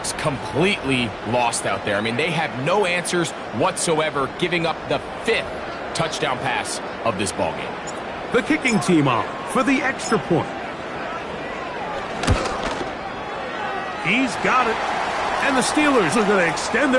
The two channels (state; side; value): identical; both; correlation 1.00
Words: completely lost out there. I mean, they have no answers whatsoever, giving up the 5th touchdown pass of this ballgame. The kicking team on for the extra point. He's got it. And the Steelers are going to extend